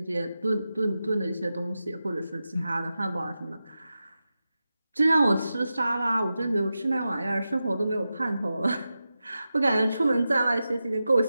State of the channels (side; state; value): both; inverted; correlation -0.92